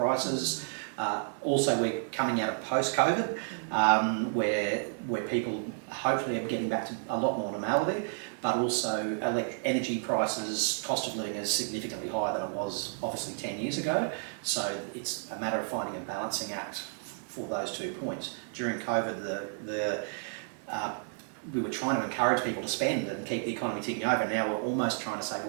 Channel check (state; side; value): silent; left; 56 dB below the other